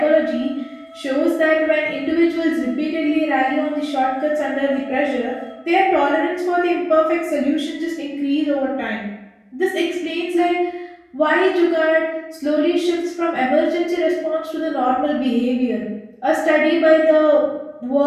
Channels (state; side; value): identical; both; correlation 1.00